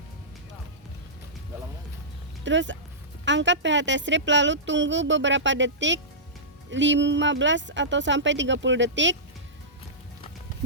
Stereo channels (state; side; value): normal; both; correlation -0.18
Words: terus angkat pH test strip lalu tunggu beberapa detik, 15 atau sampai 30 detik.